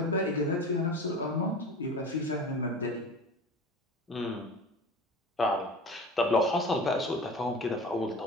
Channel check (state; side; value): normal; both; correlation 0.35